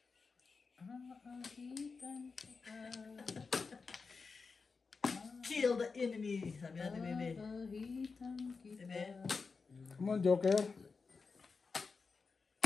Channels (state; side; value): quieter; right; 4.7 dB